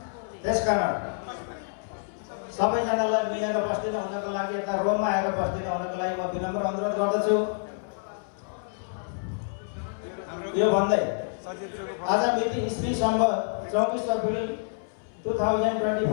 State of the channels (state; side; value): silent; right; 60 dB below the other